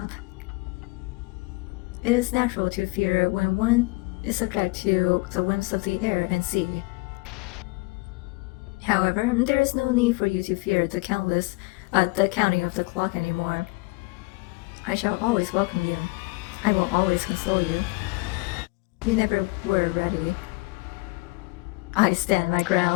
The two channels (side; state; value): right; quieter; 25.0 dB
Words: It is natural to fear when one is subject to the whims of the air and sea. However, there is no need for you to fear the counting of the clock anymore. I shall always welcome you. I will always console you. You never were ready. I stand my